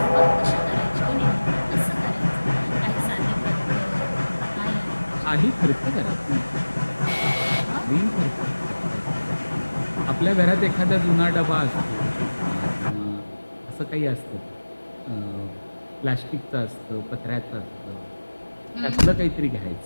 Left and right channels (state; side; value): inverted; both; correlation -1.00